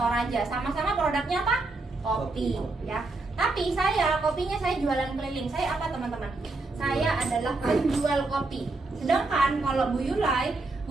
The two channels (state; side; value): quieter; left; 3.3 dB